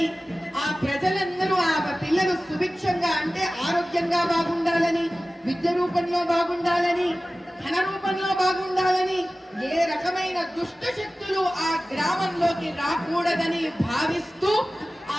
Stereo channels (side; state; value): both; normal; correlation 0.96